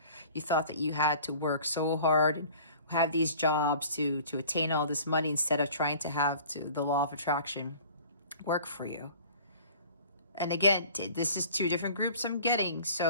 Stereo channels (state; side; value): inverted; both; correlation -0.46